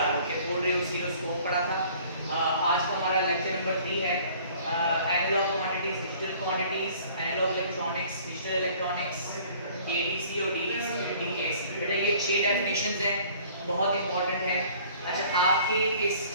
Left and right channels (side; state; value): both; inverted; correlation -0.53